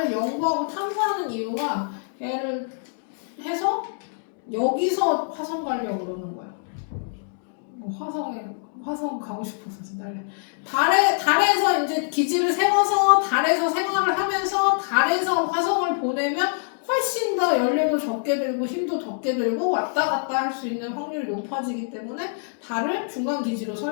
연구하고 탐사하는 이유가 얘를 해서 여기서 화성 가려고 그러는 거야. 화성 가고 싶어서 달에서 이제 기지를 세워서 달에서 생활을 하면서 달에서 화성을 보내면 훨씬 더 연료도 적게 들고 힘도 적게 들고 왔다 갔다 할 수 있는 확률이 높아지기 때문에 달을 중간 기지로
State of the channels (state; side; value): silent; right; digital silence